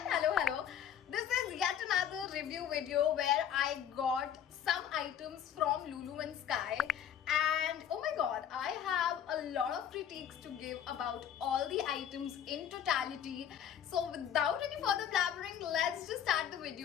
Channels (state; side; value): quieter; right; 9.3 dB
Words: hello. This is yet another review video where I got some items from Lulu and Sky, and oh my god, I have a lot of critiques to give about all the items in totality. So without any further blabbering, let's just start the